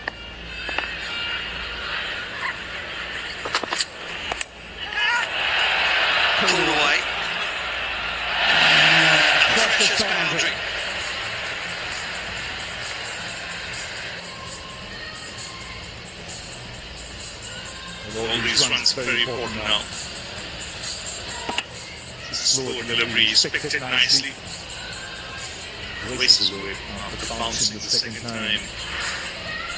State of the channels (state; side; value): identical; both; correlation 1.00